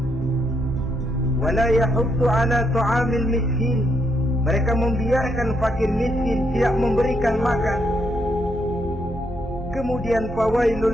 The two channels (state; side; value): normal; both; correlation 0.77